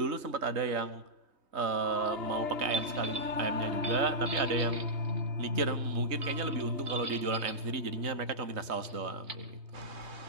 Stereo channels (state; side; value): late; left; 3.2 ms